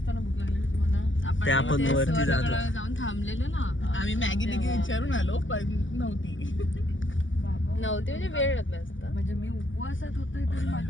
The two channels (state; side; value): late; right; 0.56 ms